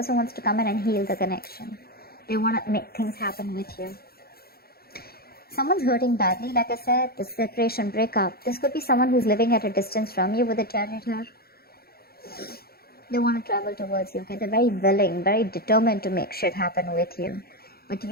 wants to come in and heal the connection. They want to make things happen with you. Someone's hurting badly, like I said, the separation, breakup. This could be someone who's living at a distance from you with a chariot here. They want to travel towards you, okay? They're very willing, very determined to make shit happen with you. But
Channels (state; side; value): late; right; 0.45 ms